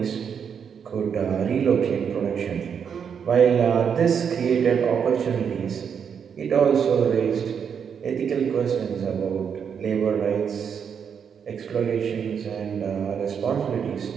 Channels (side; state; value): left; quieter; 7.2 dB